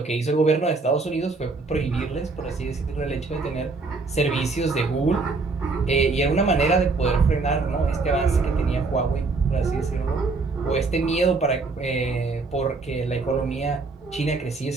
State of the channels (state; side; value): quieter; left; 3.9 dB